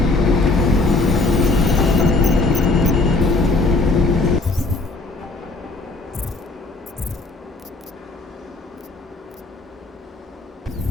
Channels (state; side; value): quieter; right; 3.2 dB